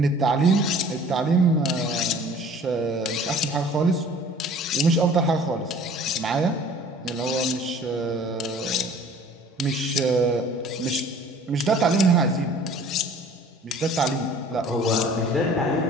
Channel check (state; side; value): normal; both; correlation 0.49